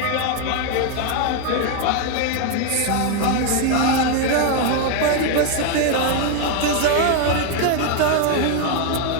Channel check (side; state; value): both; different; correlation 0.01